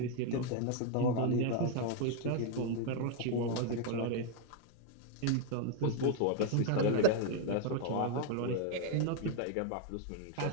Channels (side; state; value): both; different; correlation 0.00